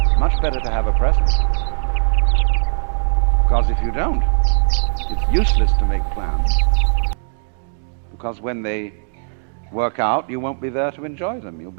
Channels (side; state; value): left; silent; digital silence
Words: Much better to have a present. Because if you don't, it's useless to make plans. Because when they work out, you won't be there to enjoy them. You'll